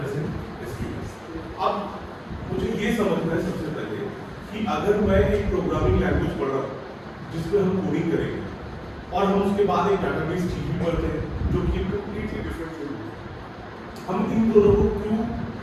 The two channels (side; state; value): both; identical; correlation 1.00